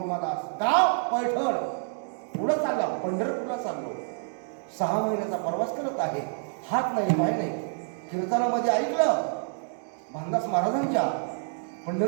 गाव पैठण. पुढं चालला, पंढरपूरला चाललो, 6 महिन्याचा प्रवास करत आहे, हात नाही पाय नाही. कीर्तनामध्ये ऐकलं भानदास महाराजांच्या,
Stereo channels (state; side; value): silent; left; digital silence